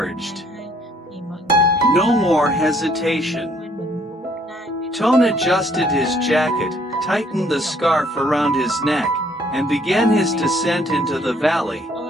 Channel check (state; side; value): normal; both; correlation 0.63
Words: No more hesitation. Toan adjusted his jacket, tightened the scarf around his neck, and began his descent into the valley,